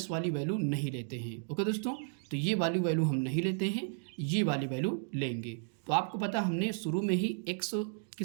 वाली वैल्यू नहीं लेते हैं। ओके दोस्तों, तो ये वाली वैल्यू हम नहीं लेते हैं, ये वाली वैल्यू लेंगे। तो आपको पता हमने शुरू में ही x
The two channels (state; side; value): silent; left; digital silence